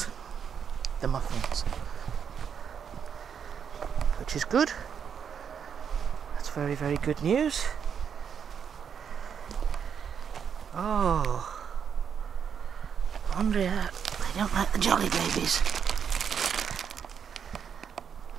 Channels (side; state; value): left; quieter; 7.4 dB